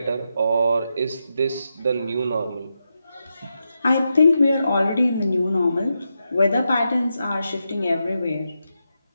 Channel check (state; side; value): inverted; both; correlation -0.86